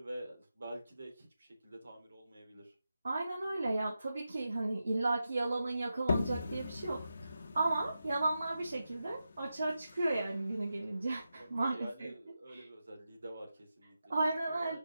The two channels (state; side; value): inverted; both; correlation -0.90